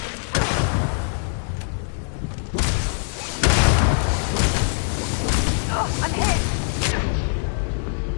Oh, I'm hit!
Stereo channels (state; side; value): silent; right; digital silence